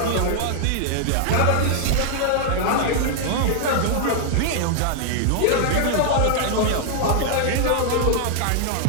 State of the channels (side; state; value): both; different; correlation 0.00